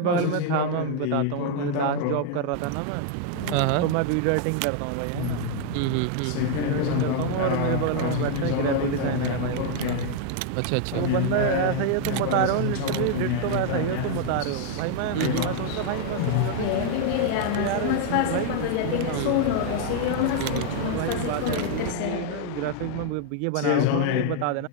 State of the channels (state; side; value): different; both; correlation 0.00